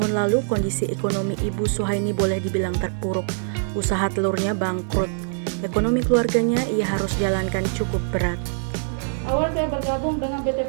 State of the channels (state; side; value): silent; left; digital silence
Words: lalu, kondisi ekonomi Ibu Suhaini boleh dibilang terpuruk. Usaha telurnya bangkrut. Ekonomi keluarganya ia harus jalankan cukup berat. Awal saya bergabung dengan